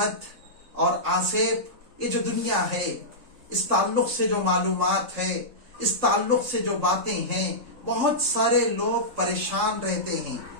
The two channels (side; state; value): left; late; 3.8 ms